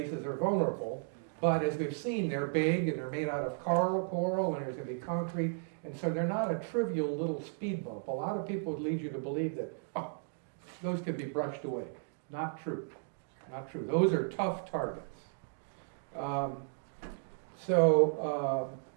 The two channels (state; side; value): silent; left; digital silence